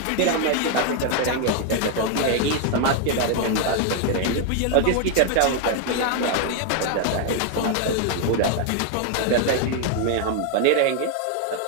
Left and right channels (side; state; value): both; different; correlation 0.00